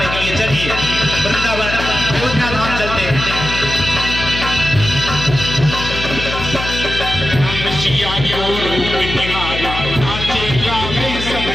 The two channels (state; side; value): noise; left; hum, 7 dB below the sound